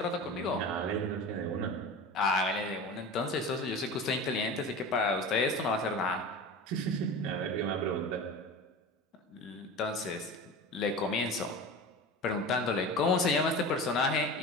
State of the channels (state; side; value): normal; both; correlation 0.32